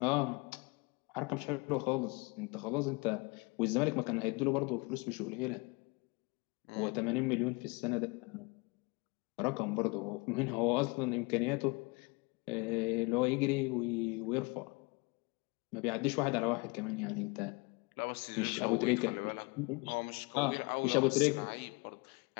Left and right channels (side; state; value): right; quieter; 27.9 dB